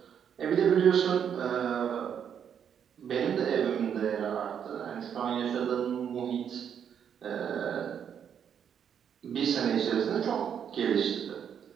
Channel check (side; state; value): left; quieter; 8.2 dB